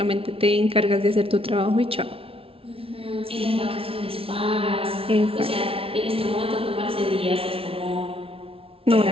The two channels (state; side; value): late; left; 0.27 ms